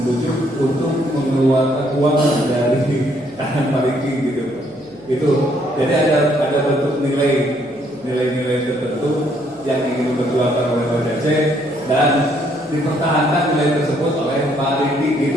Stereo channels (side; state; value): left; noise; hum, 28 dB below the sound